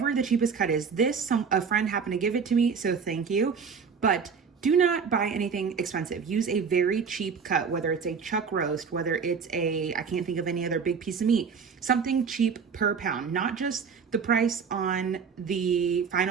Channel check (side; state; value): left; quieter; 6.0 dB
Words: the cheapest cut is. A friend happened to give it to me, so thank you. But do not buy anything expensive. Use a very cheap cut, whether it's a chuck roast, whether it's I can't think of any other big piece of meat, something cheap per pound, not just the price on the